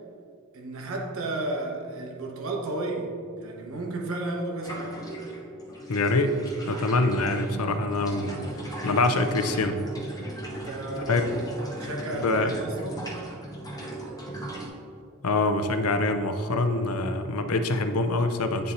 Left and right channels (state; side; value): normal; both; correlation 0.30